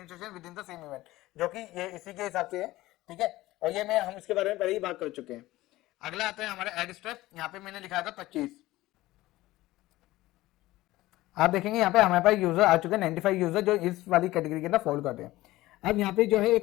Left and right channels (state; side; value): quieter; right; 17.5 dB